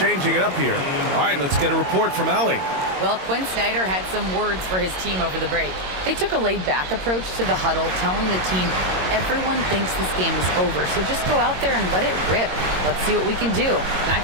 it up here. All right, let's get a report from Allie. Well, Quinn Snyder had some words for his team over the break. They took a laid-back approach to the huddle, telling the team, everyone thinks this game is over, so just go out there and let it rip. Let's see what we can do. And I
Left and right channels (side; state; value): left; late; 22 ms